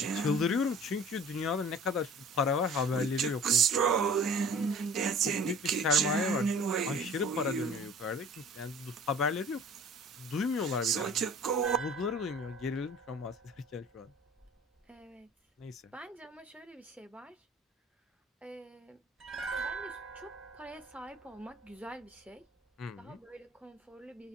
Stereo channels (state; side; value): normal; both; correlation 0.46